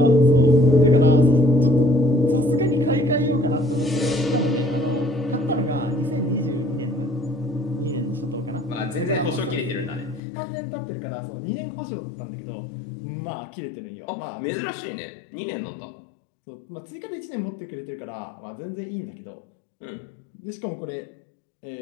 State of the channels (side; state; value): right; drops out; at 10.2 s